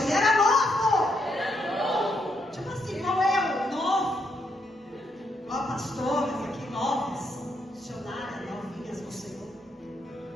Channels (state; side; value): normal; both; correlation 0.77